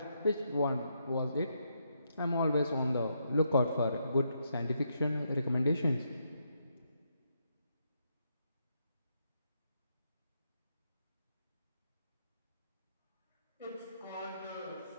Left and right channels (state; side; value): inverted; both; correlation -0.79